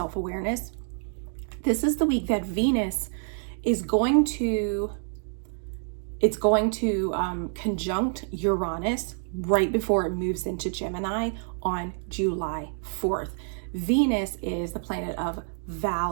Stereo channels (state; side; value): silent; left; 60 dB below the other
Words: This is the week that Venus is going to conjunct Uranus right before it moves into Gemini on July 4th. Venus is the planet of